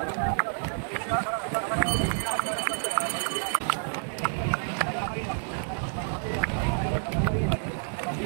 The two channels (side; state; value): left; silent; digital silence